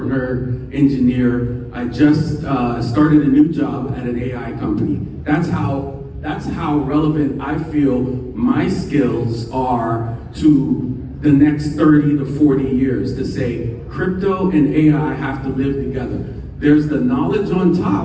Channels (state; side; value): identical; both; correlation 1.00